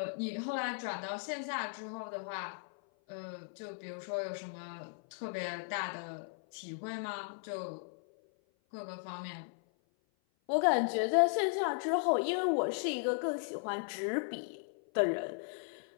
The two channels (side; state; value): right; silent; 54 dB below the other